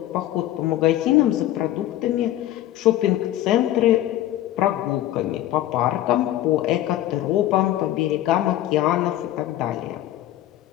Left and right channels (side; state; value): right; quieter; 13.7 dB